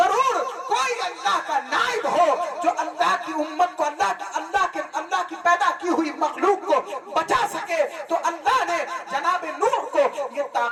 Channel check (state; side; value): identical; both; correlation 1.00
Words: कोई अल्लाह का नाइब हो जो अल्लाह की उम्मत को, अल्लाह की पैदा की हुई मखलूक को बचा सके। तो अल्लाह ने जनाब नूह को ये